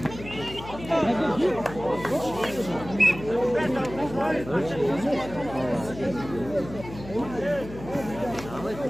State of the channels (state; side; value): noise; left; hum, 13 dB below the sound